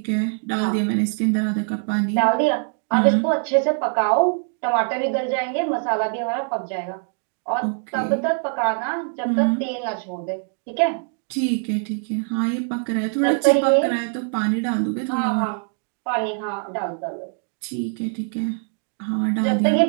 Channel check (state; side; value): silent; left; 59 dB below the other